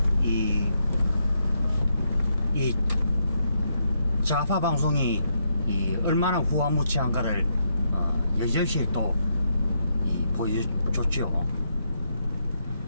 이 좌파 방송이 얼마나 후한무치한가를 여지없이 또 보여줬죠.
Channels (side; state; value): both; inverted; correlation -0.79